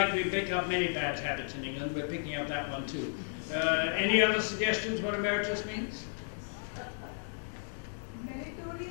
we pick up many bad habits in England, we're picking up that one too. Any other suggestions what emeritus means?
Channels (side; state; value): right; silent; 55 dB below the other